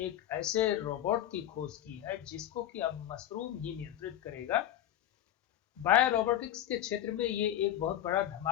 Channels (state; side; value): quieter; right; 12.1 dB